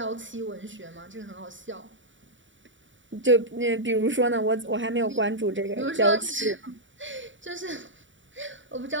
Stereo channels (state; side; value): late; left; 0.55 ms